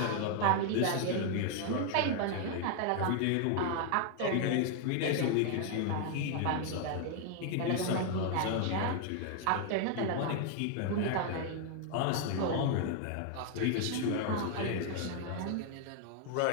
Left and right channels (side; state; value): both; different; correlation 0.00